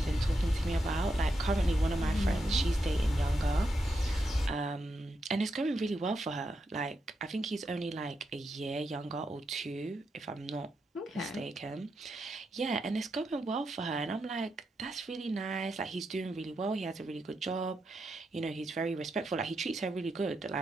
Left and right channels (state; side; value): normal; both; correlation 0.84